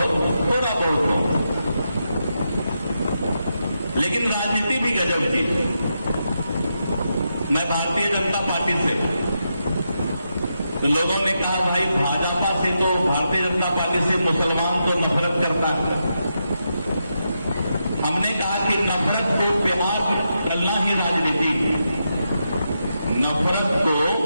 हूं, लेकिन राजनीति भी गजब चीज है। मैं भारतीय जनता पार्टी से, तो लोगों ने कहा भाई भाजपा से तो, भारतीय जनता पार्टी से मुसलमान तो नफरत करता है। हमने कहा कि नफरत को प्यार करना ही राजनीति, नफरत को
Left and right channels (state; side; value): inverted; both; correlation -0.85